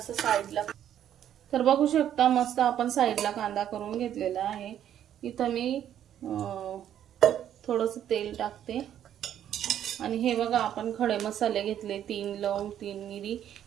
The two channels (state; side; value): quieter; left; 10.5 dB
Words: साईडला, तर बघू शकता मस्त आपण साईडला कांदा करून घेतलेला आहे. इथं मी थोडंसं तेल टाकते. आणि हे बघा आपण खडे मसाले घेतले, 3 लवंग, 3 मिरी,